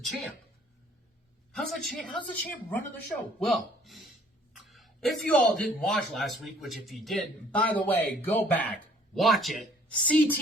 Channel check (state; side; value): normal; both; correlation 0.58